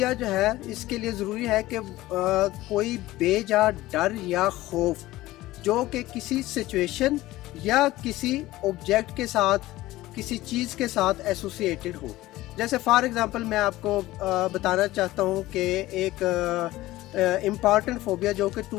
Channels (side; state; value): right; quieter; 17.2 dB